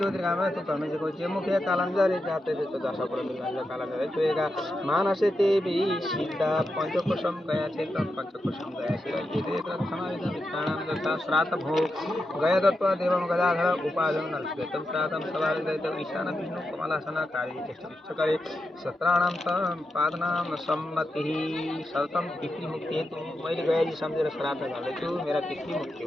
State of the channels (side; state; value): both; normal; correlation 0.88